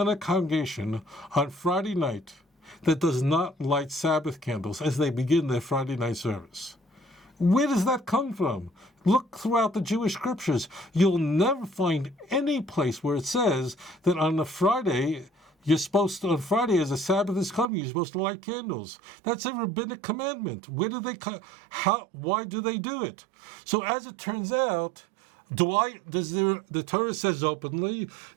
congregation on Friday night that does not light Sabbath candles as they begin their Friday night service. Where does that come from? Look throughout the Jewish scriptures. You'll never find any place where it says that on a Friday, on Friday as a Sabbath is coming, you're supposed to light candles. That's a rabbinic commandment. Why do they do it? So as it turns out, the Torah says openly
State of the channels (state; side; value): drops out; left; at 17.7 s